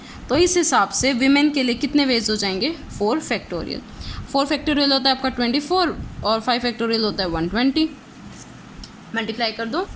तो इस हिसाब से विमेन के लिए कितने वेज हो जाएंगे? 4 फैक्टोरियल। 4 फैक्टोरियल होता है आपका 24, और 5 फैक्टोरियल होता है 120। मल्टीप्लाई कर दो,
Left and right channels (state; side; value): identical; both; correlation 1.00